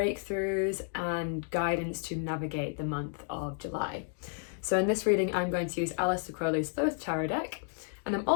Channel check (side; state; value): right; silent; 57 dB below the other